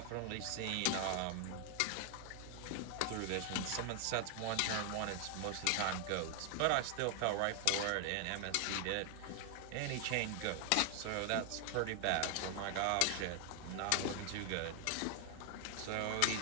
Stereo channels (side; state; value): both; different; correlation 0.00